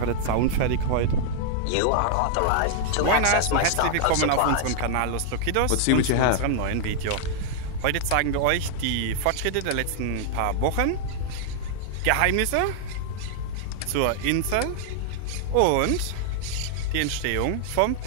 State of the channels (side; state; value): both; different; correlation -0.01